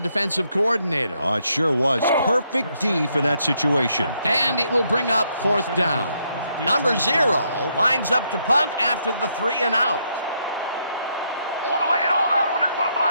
defensive coordinator. Oh, it sure was. Perfect D for that situation. And it will bring up fourth down. Number 0 lines up to punt after the 3 and out. I want to lay it all out on this punt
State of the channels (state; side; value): inverted; both; correlation -0.75